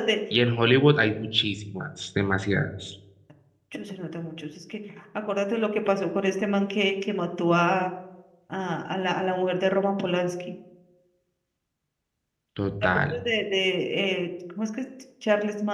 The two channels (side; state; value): both; identical; correlation 1.00